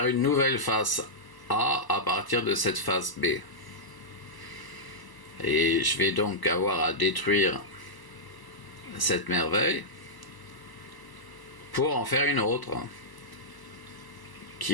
une nouvelle face A à partir de cette face B. Et je vais donc avoir à détruire cette merveille pour en faire une autre,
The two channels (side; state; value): right; late; 1.0 ms